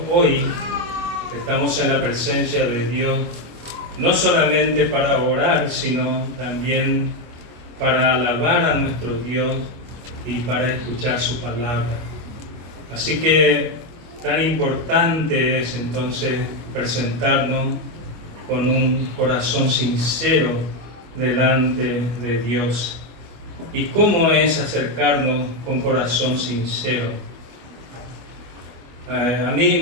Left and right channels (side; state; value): left; late; 25 ms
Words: hoy estamos en la presencia de Dios no solamente para orar, sino también para alabar a nuestro Dios y para escuchar su palabra. Así que tan importante es entonces presentarnos con un corazón sincero delante de Dios. ¿Y cómo es acercarnos con corazón sincero? A mí